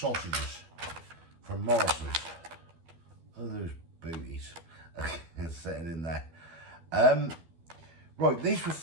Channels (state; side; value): late; left; 12 ms